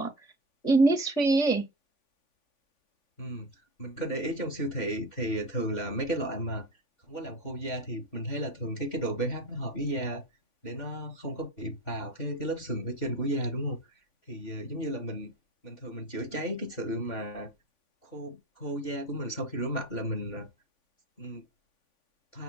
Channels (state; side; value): late; right; 3.5 ms